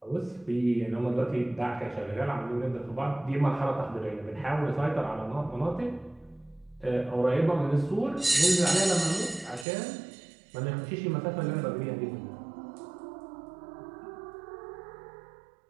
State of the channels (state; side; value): drops out; left; at 9.7 s